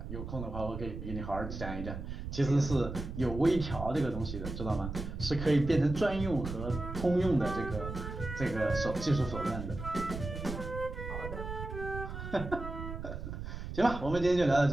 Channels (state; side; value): noise; right; rumble, 7 dB below the sound